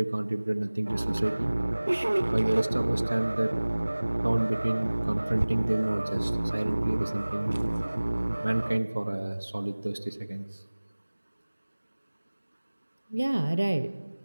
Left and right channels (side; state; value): both; inverted; correlation -1.00